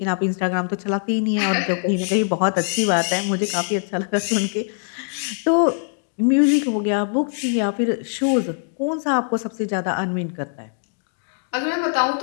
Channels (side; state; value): right; silent; digital silence